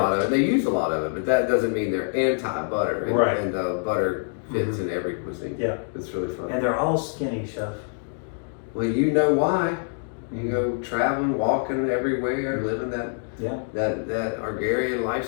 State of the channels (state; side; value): silent; right; 62 dB below the other